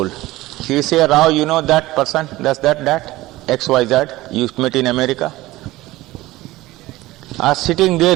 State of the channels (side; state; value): left; quieter; 18.1 dB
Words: He say, Rao, you know that person, does that, XYZ, you met in America? Sitting there,